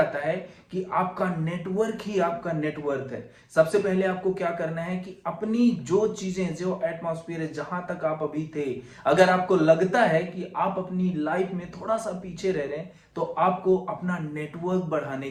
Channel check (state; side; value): identical; both; correlation 1.00